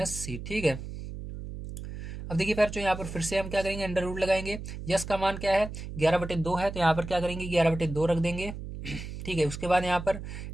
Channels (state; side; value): noise; right; hum, 9 dB below the sound